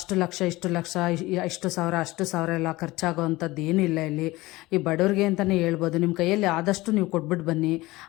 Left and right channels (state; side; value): quieter; right; 19.8 dB